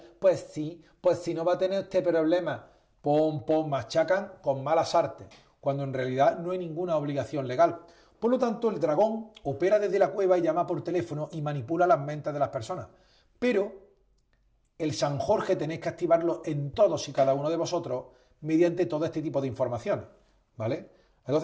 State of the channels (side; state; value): both; identical; correlation 1.00